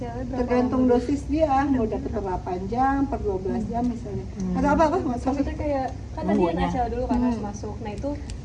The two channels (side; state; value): both; identical; correlation 1.00